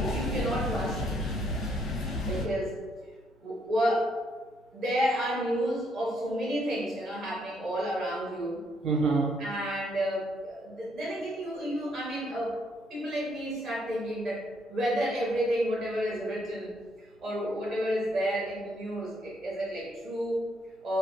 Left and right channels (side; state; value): both; normal; correlation 0.71